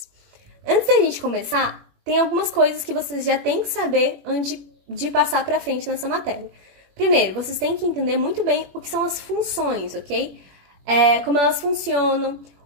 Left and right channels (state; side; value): late; left; 21 ms